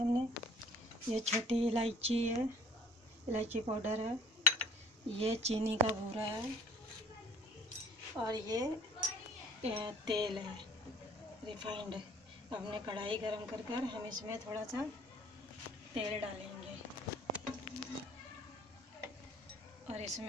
ये छोटी इलायची है, इलायची पाउडर है, ये चीनी का बूरा है और ये तेल है रिफाइंड। हमने कढ़ाई गरम कर हम इसमें थोड़ा सा तेल डालेंगे और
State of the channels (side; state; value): both; normal; correlation 0.53